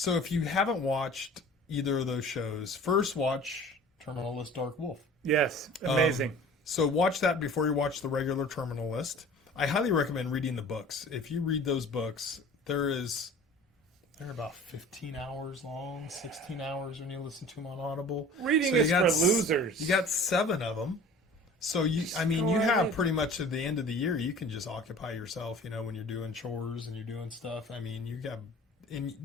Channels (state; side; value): normal; both; correlation 0.44